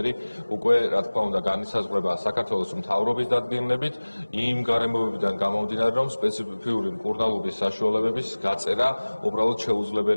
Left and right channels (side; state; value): both; inverted; correlation -1.00